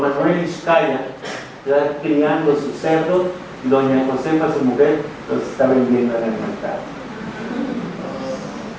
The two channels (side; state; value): both; identical; correlation 1.00